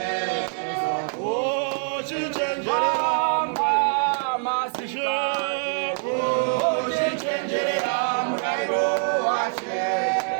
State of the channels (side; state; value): left; silent; 62 dB below the other